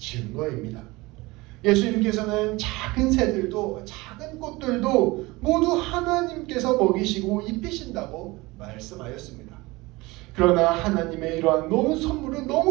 예수님께서는 작은 새들도 작은 꽃들도 모두 하나님께서 먹이시고 입히신다고 말씀하였습니다. 그러나 하나님의 이러한 선물은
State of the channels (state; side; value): quieter; left; 22.0 dB